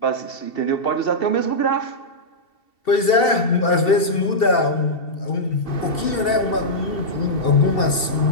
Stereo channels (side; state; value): right; late; 2.7 ms